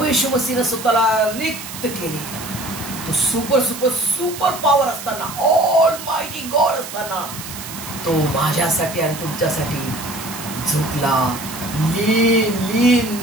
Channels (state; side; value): noise; right; hiss, 11 dB below the sound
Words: येशू मसीहने स्वतःला रिक्त केले. तो सुपर सुपर सुपर पॉवर असताना, ऑल मायटी गॉड असताना, तो माझ्यासाठी आणि तुमच्यासाठी झुकला. लीन लीन